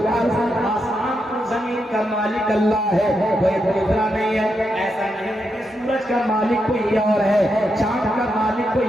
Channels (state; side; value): normal; both; correlation 0.83